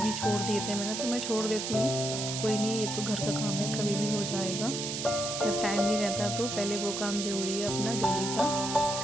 छोड़ दिए थे मैंने, तो मैं छोड़ देती हूँ, कोई नहीं, ये तो घर का काम है, कभी भी हो जाएगा। जब टाइम नहीं रहता तो पहले वो काम ज़रूरी है अपना डेली का।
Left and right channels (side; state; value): right; noise; hiss, 4 dB below the sound